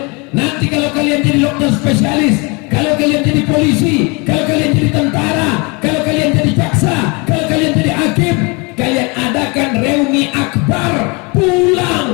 Nanti kalau kalian jadi dokter spesialis, kalau kalian jadi polisi, kalau kalian jadi tentara, kalau kalian jadi jaksa, kalau kalian jadi hakim, kalian adakan reuni akbar,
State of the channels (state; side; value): quieter; right; 29.4 dB